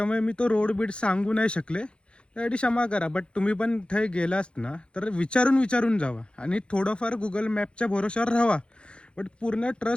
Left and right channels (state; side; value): late; right; 0.056 ms